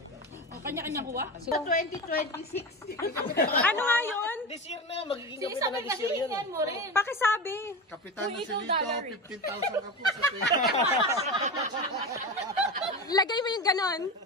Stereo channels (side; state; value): both; normal; correlation 0.23